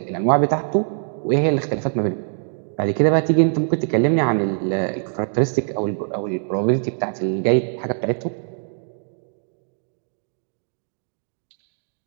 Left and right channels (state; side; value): silent; left; digital silence